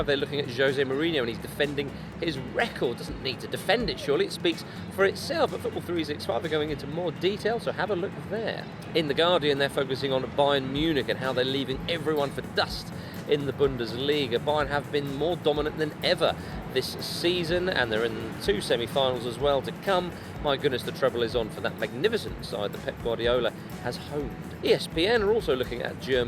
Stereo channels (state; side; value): identical; both; correlation 1.00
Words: they're looking at Jose Mourinho and he's defending his record. Doesn't need to defend it, surely. It speaks for itself. But Football 365 are going into more detail, so have a look there. In The Guardian, they're focusing on Bayern Munich and how they're leaving everyone for dust in the Bundesliga. Bayern have been more dominant than ever this season, and they're in 2 semi-finals as well to come. My goodness, the treble is on for that magnificent side that Pep Guardiola has honed. ESPN are also looking at